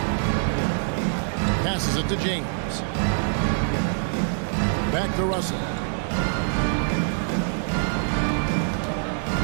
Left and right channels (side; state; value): left; silent; 62 dB below the other